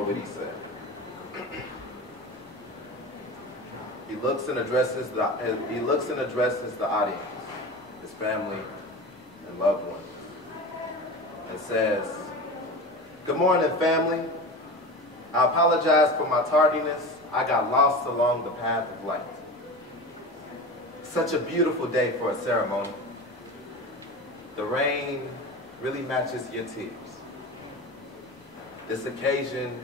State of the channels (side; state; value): both; normal; correlation 0.30